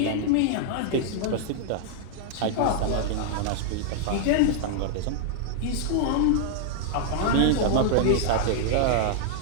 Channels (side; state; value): both; different; correlation -0.01